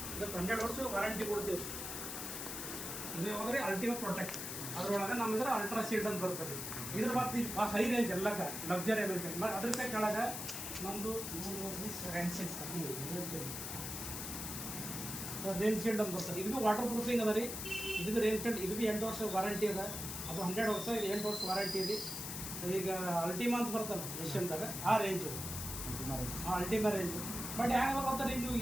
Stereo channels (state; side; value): noise; left; hiss, 5 dB below the sound